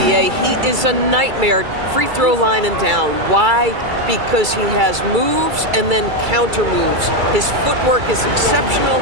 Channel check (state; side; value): late; left; 2.3 ms